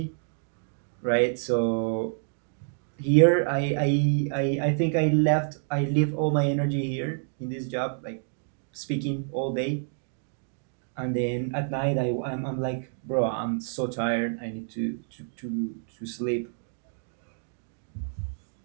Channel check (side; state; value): left; silent; digital silence